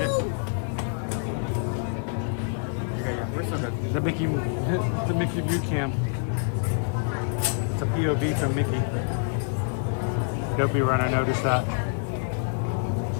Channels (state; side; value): silent; right; 58 dB below the other